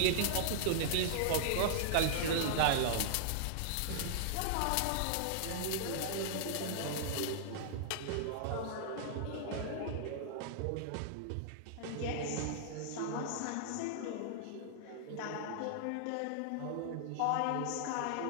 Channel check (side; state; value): both; different; correlation -0.01